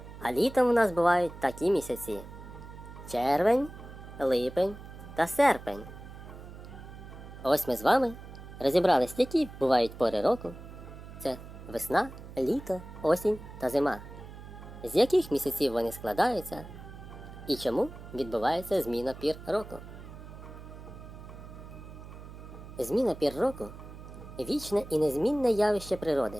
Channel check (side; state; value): right; noise; hum, 14 dB below the sound